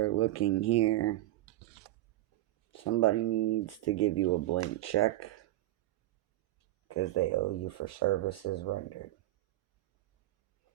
looking here, somebody needs to give you a blank check because they owe you for services rendered.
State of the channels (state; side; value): quieter; left; 15.7 dB